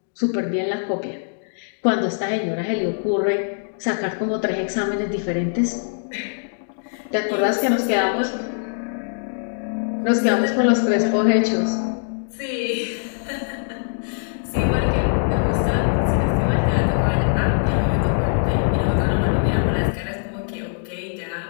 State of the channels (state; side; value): silent; right; digital silence